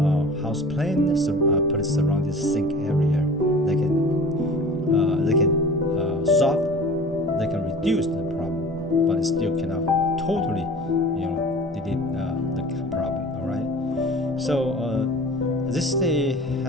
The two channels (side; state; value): both; normal; correlation 0.41